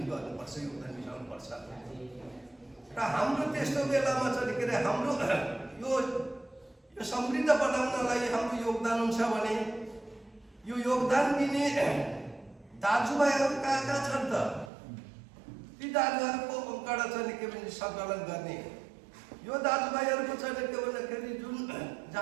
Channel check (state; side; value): drops out; left; at 14.7 s